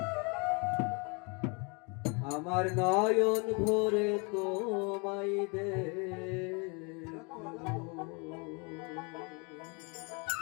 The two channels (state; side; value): quieter; right; 32.6 dB